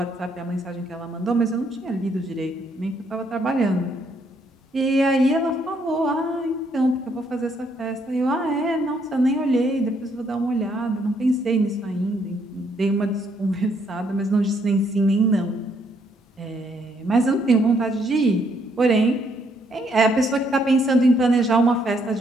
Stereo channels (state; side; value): normal; both; correlation 0.71